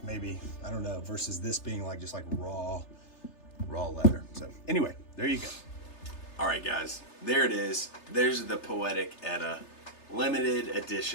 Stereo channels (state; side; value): late; right; 3.3 ms